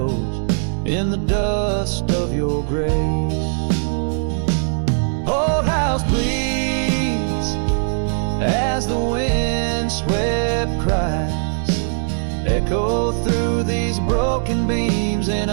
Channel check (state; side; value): silent; left; digital silence